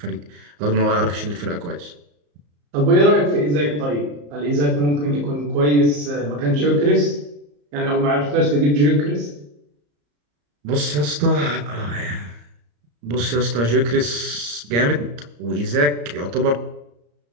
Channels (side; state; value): left; late; 34 ms